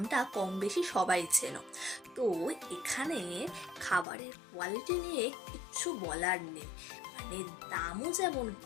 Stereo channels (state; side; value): drops out; right; at 4.0 s